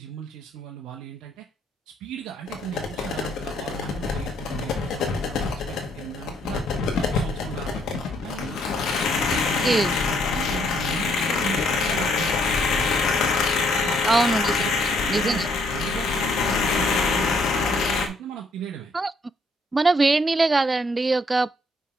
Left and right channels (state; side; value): normal; both; correlation 0.69